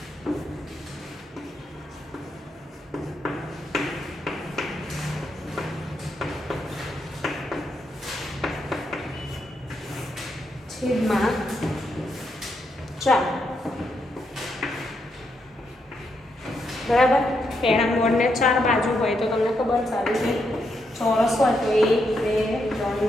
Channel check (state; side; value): normal; both; correlation 0.80